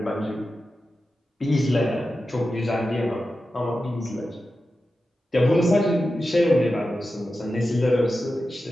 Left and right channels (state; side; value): normal; both; correlation 0.92